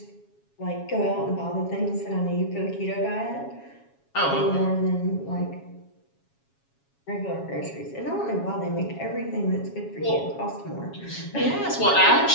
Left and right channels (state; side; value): late; right; 7.3 ms